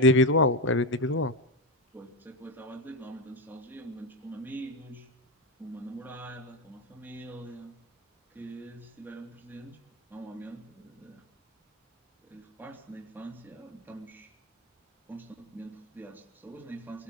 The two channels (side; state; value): both; normal; correlation 0.13